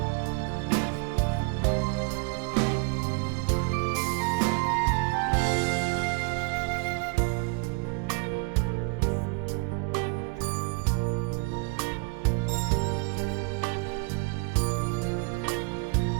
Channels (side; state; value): left; quieter; 29.2 dB